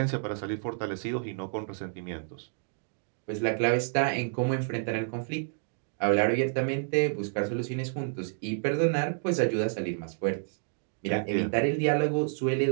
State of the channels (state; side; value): silent; left; digital silence